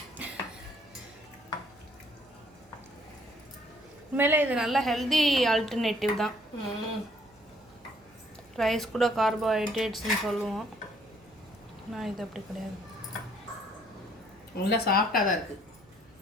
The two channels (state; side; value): noise; right; hum, 28 dB below the sound